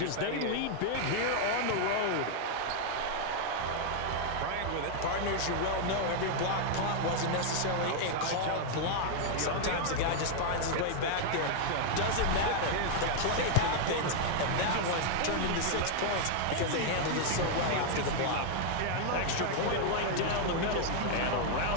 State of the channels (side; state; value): both; different; correlation 0.00